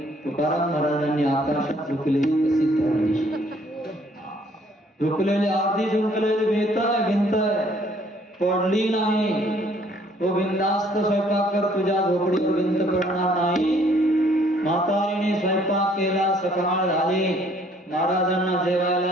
तुकाराम महाराजांनी आकाशात झुकलेली कशी धरली. झुकलेली अर्धी झुकलेली भिंत पडली नाही. तो बिनधास्त स्वयंपाक कर, तुझ्या झोपडीवर भिंत पडणार नाही. म्हातारीने स्वयंपाक केला. सकाळ झाली, महाराजांना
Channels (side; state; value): both; normal; correlation 0.62